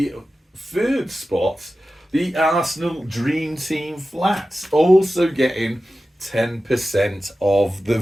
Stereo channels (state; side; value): normal; both; correlation 0.94